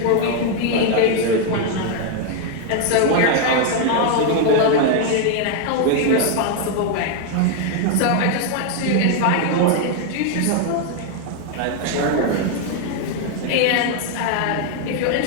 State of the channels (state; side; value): different; both; correlation 0.00